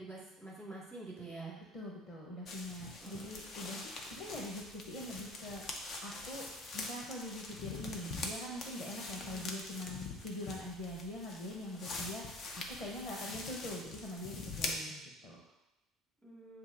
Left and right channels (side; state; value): both; normal; correlation 0.43